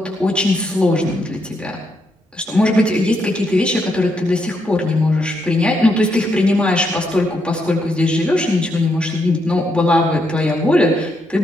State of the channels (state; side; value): normal; both; correlation 0.79